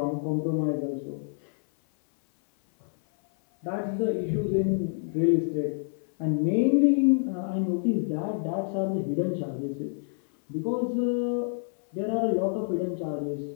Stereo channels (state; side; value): silent; right; 56 dB below the other